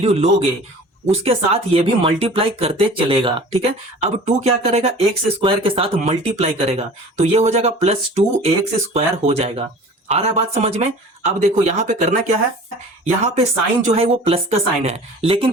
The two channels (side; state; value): both; normal; correlation 0.43